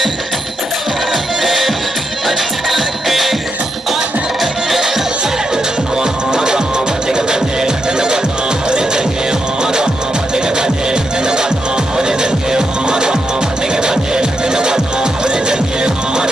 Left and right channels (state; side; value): normal; both; correlation 0.83